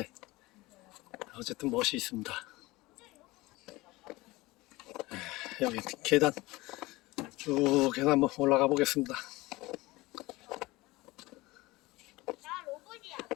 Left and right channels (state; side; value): quieter; right; 20.7 dB